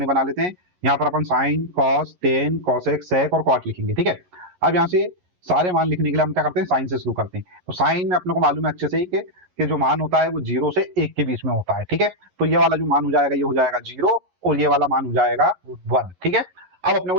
बना लेते हैं। यहाँ पर अपन साइन, कॉस, टेन, कोसेक, सेक और कॉट लिखेंगे। ठीक है, अब यहाँ से सारे मान लिखने के लिए हम क्या करते हैं, साइन से शुरू करते हैं। तो साइन में अपने को मालूम है अच्छे से ही कि जो मान होता है वो 0 से 1 के बीच में होता है। ठीक है, तो ये वाला जो मान हो जाएगा ये हो जाएगा 0 और ये वाला मान हो जाएगा 1। ठीक है, अब अपने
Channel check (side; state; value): left; late; 11 ms